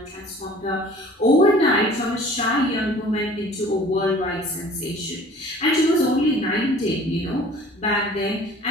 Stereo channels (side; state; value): both; normal; correlation 0.48